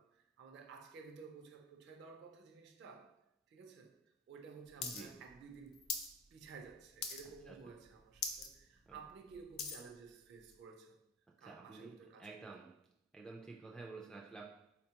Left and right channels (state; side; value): normal; both; correlation 0.34